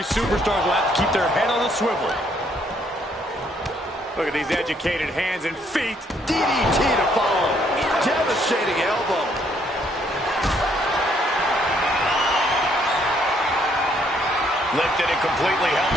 superstars will have to keep their head on a swivel. Look at these educated hands and feet. DDT to follow. Devastating elbow. Lifted and completely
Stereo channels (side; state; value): both; normal; correlation 0.68